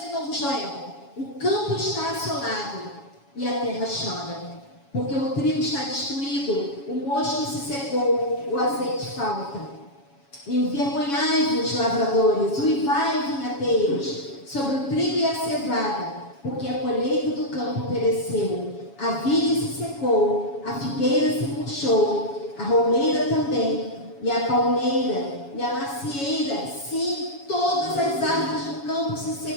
novo Joel. O campo está assolado e a terra chora, porque o trigo está destruído, o mosto se secou, o azeite falta. Envergonhai-vos, lavradores, uivai, vinhateiros, sobre o trigo e a cevada, porque a colheita do campo pereceu, a vide se secou, a figueira se murchou, a romeira também, e a palmeira, e a macieira, sim, todas as árvores do campo se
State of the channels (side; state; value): right; late; 7.2 ms